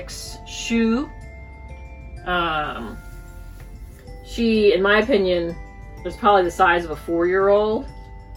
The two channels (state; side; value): identical; both; correlation 1.00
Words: shoe. She, in my opinion, is probably the size of a 4-year-old,